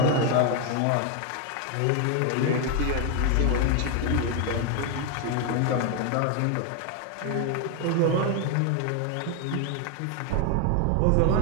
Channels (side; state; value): both; different; correlation 0.01